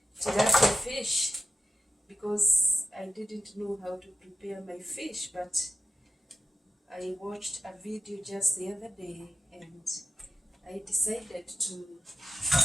tilapia fish because I didn't know how to prepare my fish, but I watched a video just the other day and I decided to do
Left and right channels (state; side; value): normal; both; correlation 0.90